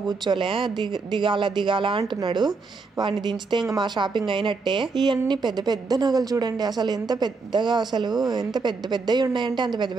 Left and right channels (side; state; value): left; quieter; 4.3 dB